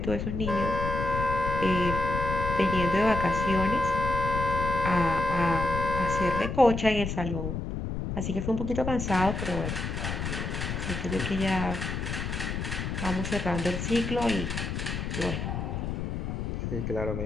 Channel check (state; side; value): noise; left; rumble, 3 dB below the sound